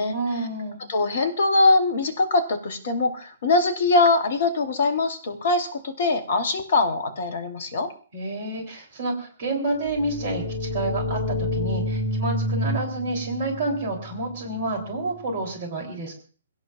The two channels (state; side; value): inverted; both; correlation -0.45